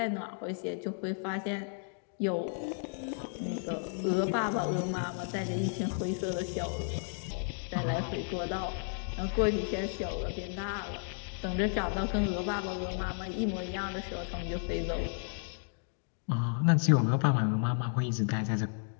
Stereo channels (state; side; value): silent; right; 56 dB below the other